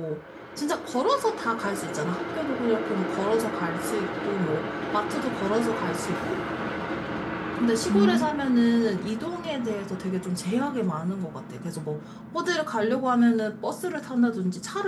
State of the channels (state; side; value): identical; both; correlation 1.00